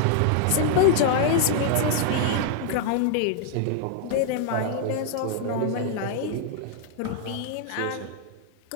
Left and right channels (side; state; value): both; different; correlation 0.00